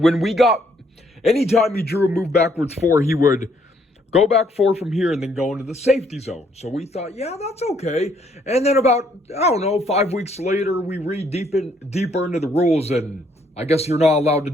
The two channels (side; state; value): both; normal; correlation 0.68